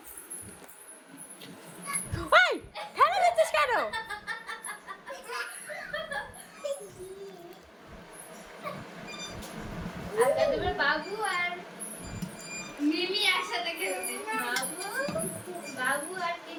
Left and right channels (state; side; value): identical; both; correlation 1.00